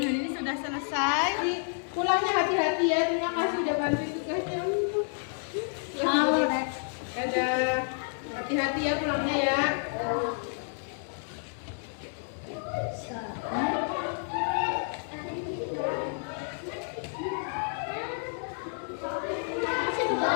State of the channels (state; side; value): silent; right; 58 dB below the other